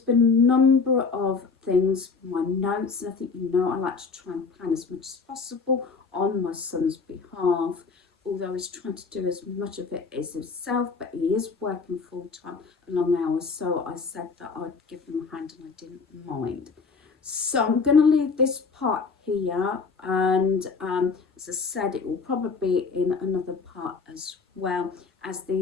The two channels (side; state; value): right; quieter; 4.8 dB